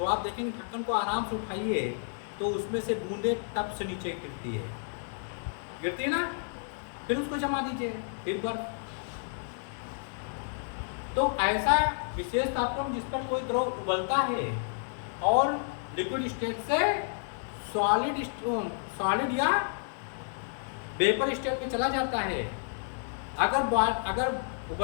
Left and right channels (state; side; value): silent; right; 57 dB below the other